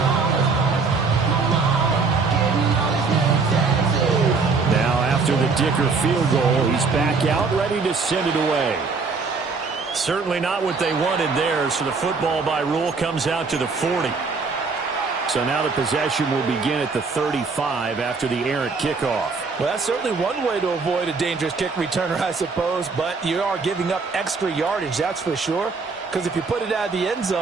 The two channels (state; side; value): quieter; left; 4.5 dB